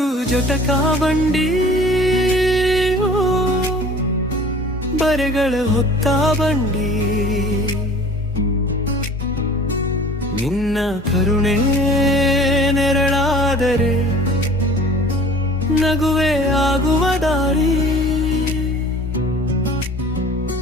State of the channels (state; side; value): normal; both; correlation 0.46